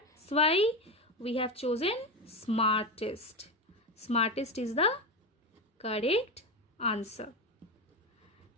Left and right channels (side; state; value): both; normal; correlation 0.17